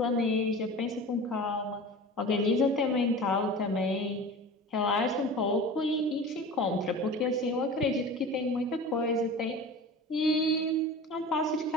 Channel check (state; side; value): normal; both; correlation 0.35